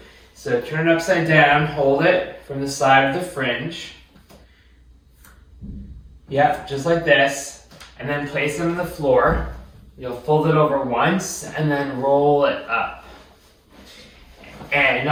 So turn it upside down, hold it from the side of the fringe. Yep, just like this. And then place them on the floor. You'll fold it over once and then roll it up. And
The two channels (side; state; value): both; identical; correlation 1.00